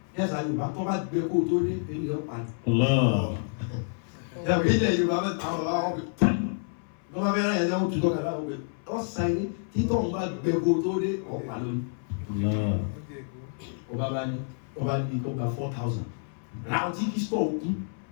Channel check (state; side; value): silent; right; 57 dB below the other